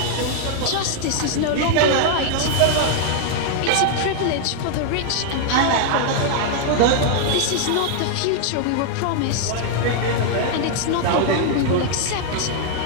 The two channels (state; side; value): different; both; correlation -0.01